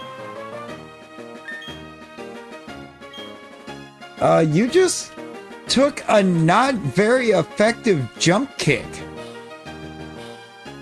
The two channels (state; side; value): identical; both; correlation 1.00